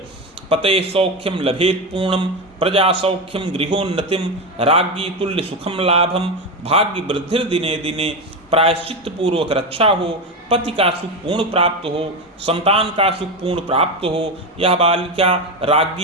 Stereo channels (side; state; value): both; normal; correlation 0.15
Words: पते सौख्यम लभेत पूर्णम प्रजा सौख्यम गृहोन्नतिम राज्ञी तुल्य सुखम लाभम भाग्य वृद्धिर दिने दिने। प्रायश्चित्त पूर्वक रक्षा हो, पति का सुख पूर्ण प्राप्त हो, संतान का सुख पूर्ण प्राप्त हो, यह बालिका